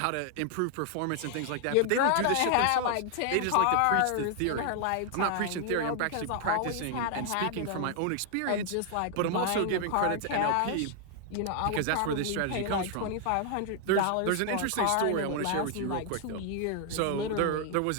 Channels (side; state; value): both; different; correlation 0.00